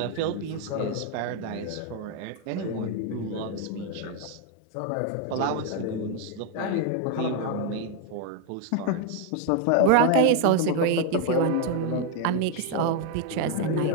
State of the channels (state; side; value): different; both; correlation 0.01